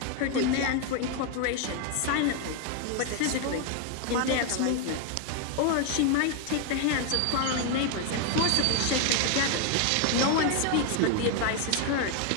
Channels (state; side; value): different; both; correlation 0.01